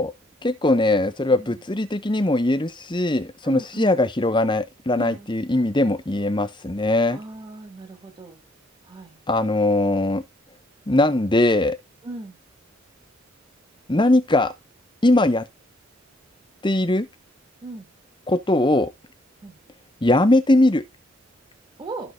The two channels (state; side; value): normal; both; correlation 0.69